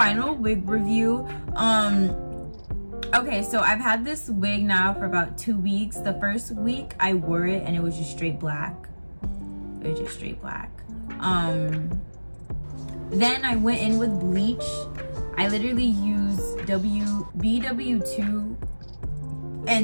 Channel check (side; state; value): both; inverted; correlation -1.00